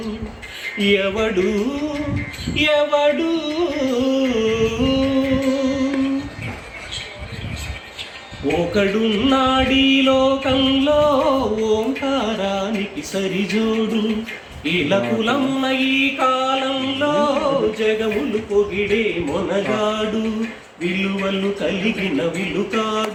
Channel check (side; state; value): both; identical; correlation 1.00